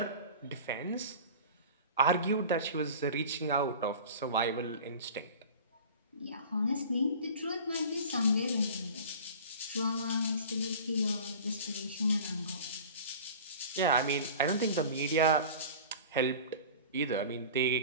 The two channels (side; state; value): both; inverted; correlation -0.39